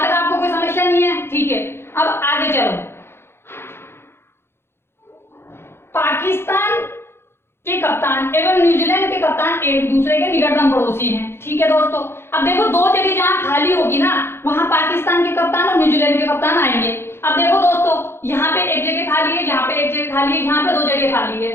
तक आपको कोई समस्या नहीं है? ठीक है, अब आगे चलो। पाकिस्तान के कप्तान एवं न्यूजीलैंड के कप्तान एक दूसरे के निकटतम पड़ोसी हैं। ठीक है दोस्तों, अब देखो दो जगह जहां खाली होगी ना, वहां पाकिस्तान के कप्तान और न्यूजीलैंड के कप्तान आएंगे। अब देखो दोस्तों, यहाँ पे एक जगह खाली है, यहाँ पे एक जगह खाली है, यहाँ पे दो जगह खाली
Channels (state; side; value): late; right; 0.12 ms